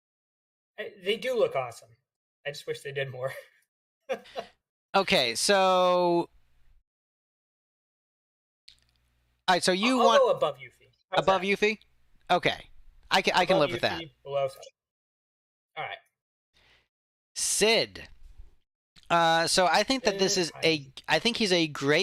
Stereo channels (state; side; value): identical; both; correlation 1.00